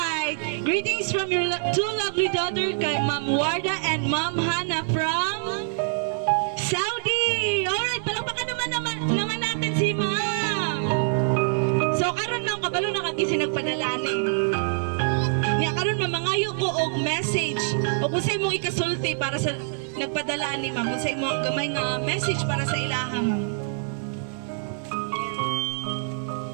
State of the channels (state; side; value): silent; left; digital silence